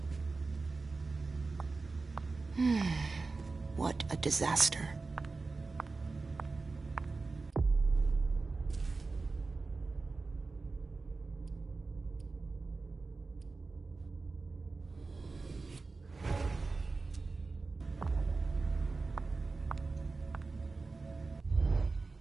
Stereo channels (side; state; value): left; quieter; 3.9 dB